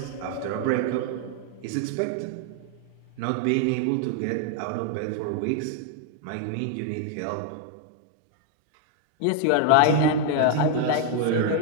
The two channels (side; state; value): both; different; correlation 0.00